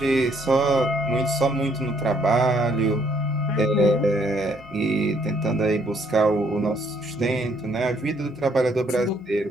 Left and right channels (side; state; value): both; normal; correlation 0.67